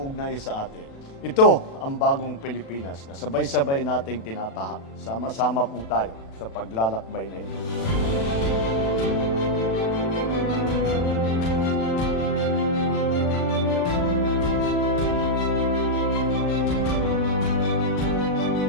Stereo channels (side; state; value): right; late; 36 ms